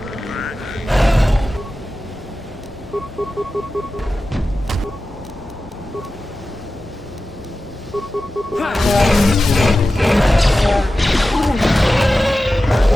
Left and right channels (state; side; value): normal; both; correlation 0.94